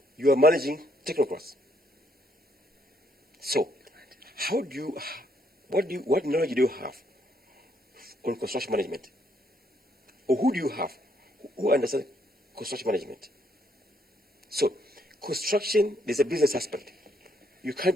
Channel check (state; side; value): normal; both; correlation 0.71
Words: are managing technocrats. So, what knowledge do you have on construction management? Or who do you have who understands construction management? So, construction, there's a business aspect. You can't